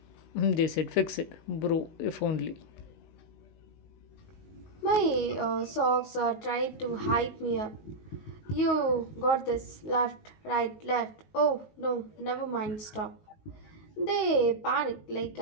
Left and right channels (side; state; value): right; late; 19 ms